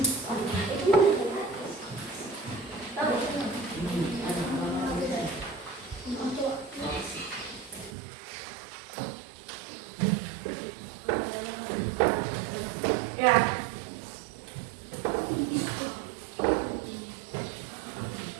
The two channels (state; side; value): drops out; left; at 7.9 s